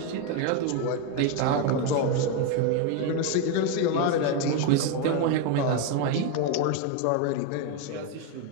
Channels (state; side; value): different; both; correlation 0.02